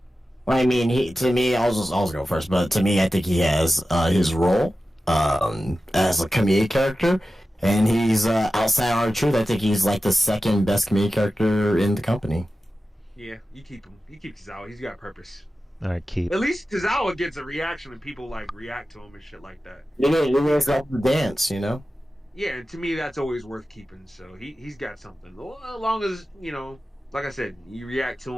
Well, I mean, to me, I'll go first, but to me, I think he has his role as a comedic character, and he's outside R-Truth. I think he's like the second best comedic character in the company. Yeah, you keep him. You keep Tozawa. He's got purpose. All right, keep. At least Tozawa gets a reaction and people like react to him and shit like that. You guys like the dance, Yeah, and to me that's always worth keeping. So he's got something. As long as like I said, you react to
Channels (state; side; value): normal; both; correlation 0.94